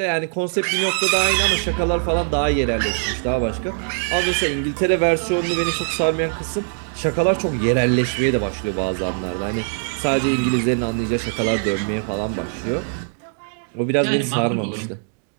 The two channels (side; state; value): left; silent; 65 dB below the other